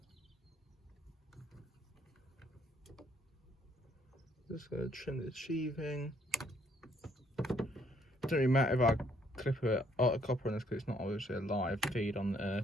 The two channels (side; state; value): both; normal; correlation 0.67